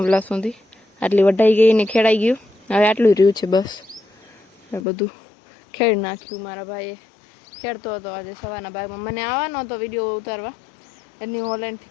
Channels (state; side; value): drops out; right; at 4.8 s